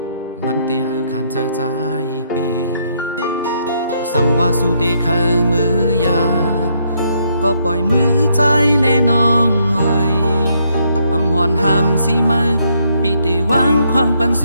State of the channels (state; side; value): inverted; both; correlation -0.73